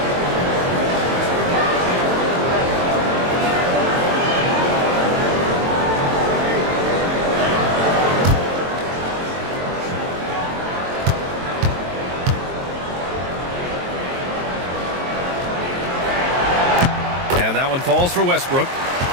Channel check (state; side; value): late; left; 22 ms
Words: Falls for Westbrook.